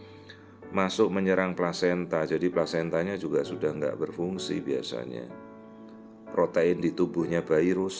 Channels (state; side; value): identical; both; correlation 1.00